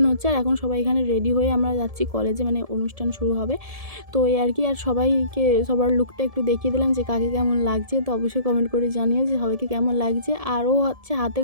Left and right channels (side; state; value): left; late; 1.7 ms